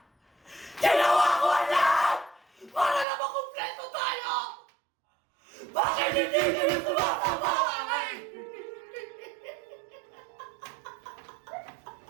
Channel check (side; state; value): left; drops out; at 3.1 s